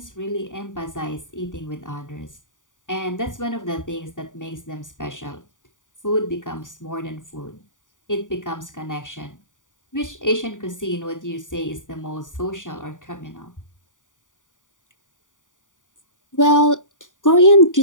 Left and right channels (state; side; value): late; right; 0.87 ms